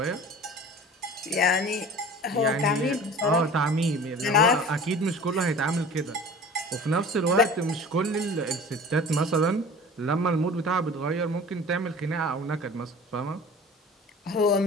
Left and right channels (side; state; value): both; normal; correlation 0.41